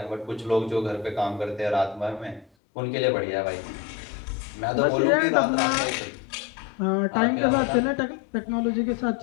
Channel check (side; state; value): right; drops out; at 2.5 s